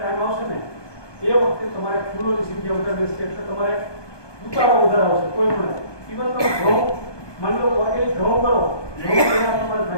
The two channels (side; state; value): right; late; 1.2 ms